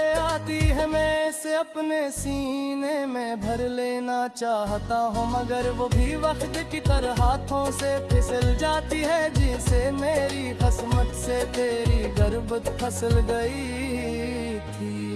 आती है। मैं इसे अपने सीने में भर लेना चाहता हूँ मगर वो भी वक्त की तरह हाथों से फिसल जाती है, जिसे मेरी किस्मत से तेरी गर्बत फसल गई थी।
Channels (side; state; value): both; identical; correlation 1.00